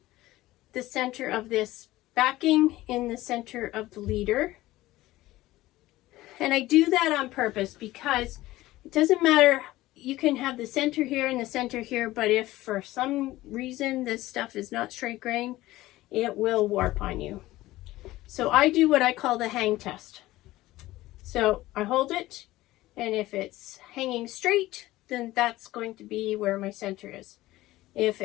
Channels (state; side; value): quieter; right; 17.0 dB